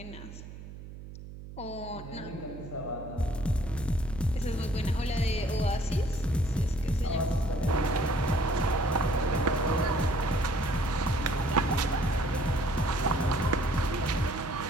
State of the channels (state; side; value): noise; right; hum, 13 dB below the sound